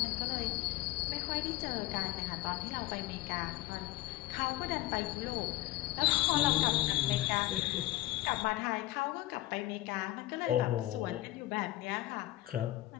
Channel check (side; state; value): right; quieter; 16.8 dB